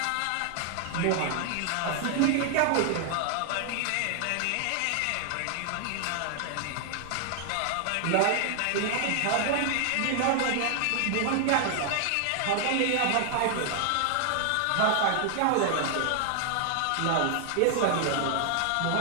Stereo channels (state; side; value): different; both; correlation 0.00